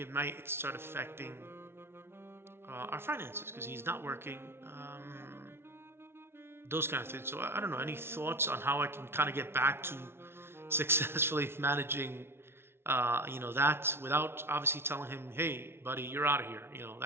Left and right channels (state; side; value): late; left; 0.12 ms